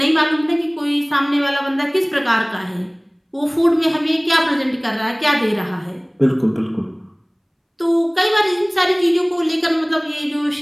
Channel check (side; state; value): both; identical; correlation 1.00